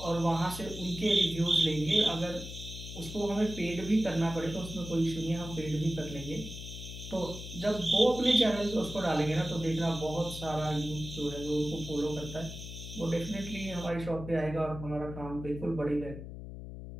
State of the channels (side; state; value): left; noise; hum, 10 dB below the sound